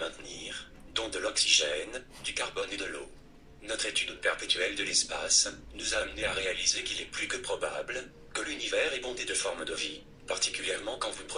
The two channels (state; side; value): identical; both; correlation 1.00